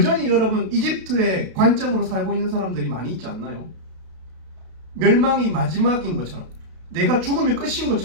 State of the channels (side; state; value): left; late; 32 ms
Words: 여러분, 이집트의 관점으로 살고 있는 사람들이 많이 있지 않나요? 멸망이 마지막인 것처럼, 내가 죽으면 끝인